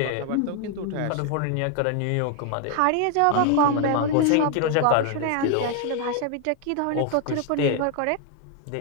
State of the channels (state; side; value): different; both; correlation 0.00